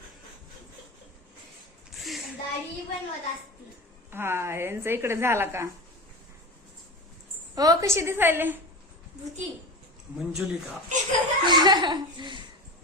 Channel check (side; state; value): both; normal; correlation 0.25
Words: हा यांचा इकडे झाला का हो कशी दिसायले मंजुलिका